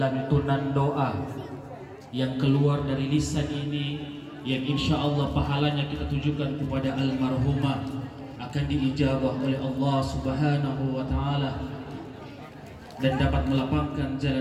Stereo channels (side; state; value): both; identical; correlation 1.00